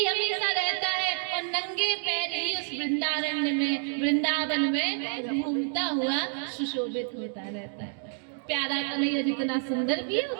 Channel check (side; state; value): left; silent; 59 dB below the other